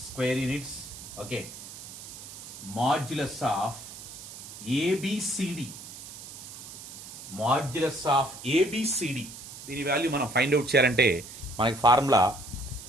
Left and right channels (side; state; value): right; noise; hiss, 13 dB below the sound